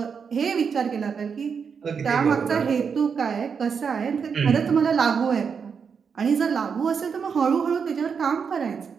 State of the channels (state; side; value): quieter; left; 6.2 dB